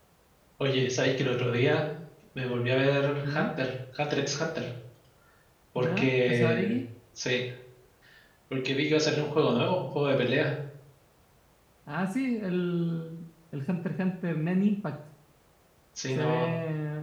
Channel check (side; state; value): both; identical; correlation 1.00